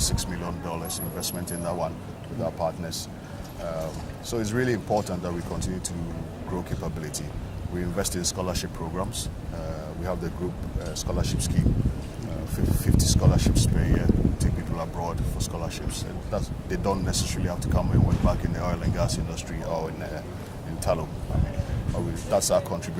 million investment in that one with our partners. So it's really important that we continue to grow capability. We invest in scholarship programs. We have the group scholarship scheme, 50 scholarships per year. We take people abroad for scholarships. And they don't necessarily have to come and work back in the oil and gas industry or in tallow. That's our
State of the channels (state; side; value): identical; both; correlation 1.00